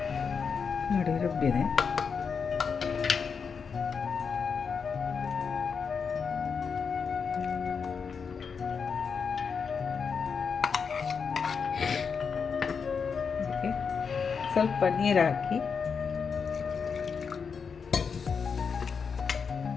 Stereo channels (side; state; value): right; quieter; 5.9 dB